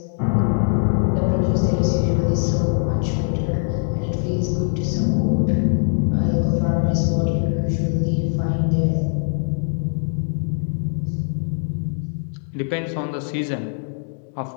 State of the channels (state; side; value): silent; right; 64 dB below the other